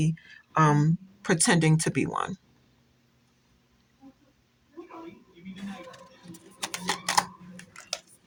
pretending to be one.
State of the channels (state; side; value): identical; both; correlation 1.00